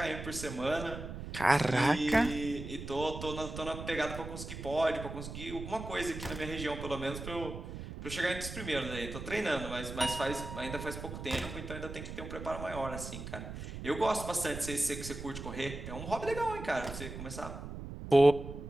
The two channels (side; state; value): right; noise; rumble, 9 dB below the sound